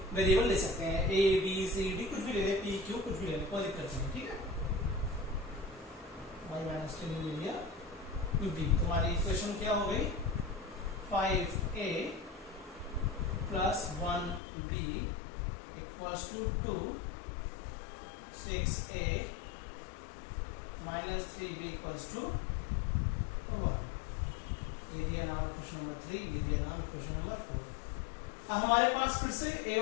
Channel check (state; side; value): drops out; right; at 14.4 s